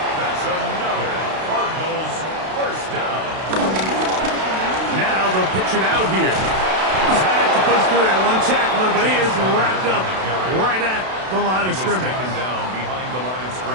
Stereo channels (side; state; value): left; late; 32 ms